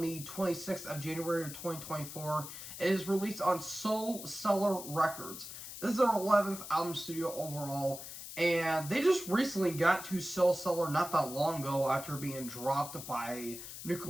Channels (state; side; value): noise; left; hiss, 11 dB below the sound